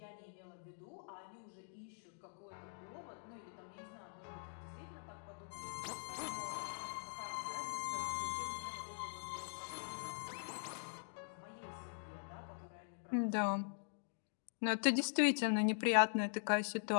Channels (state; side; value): silent; right; digital silence